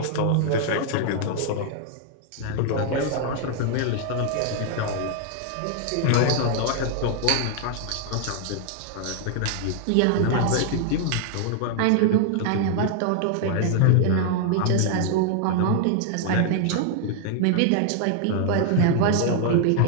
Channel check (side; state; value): both; different; correlation 0.00